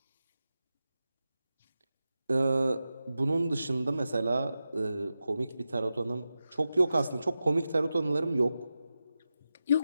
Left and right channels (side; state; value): both; inverted; correlation -0.91